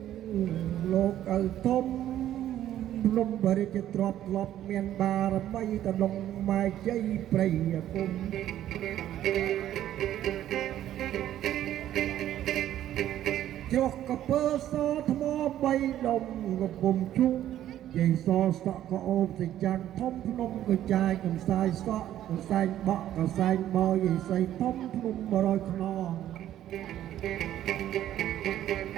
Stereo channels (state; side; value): quieter; left; 12.1 dB